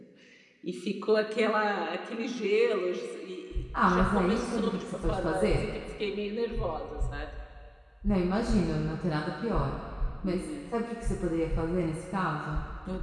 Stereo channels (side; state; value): both; identical; correlation 1.00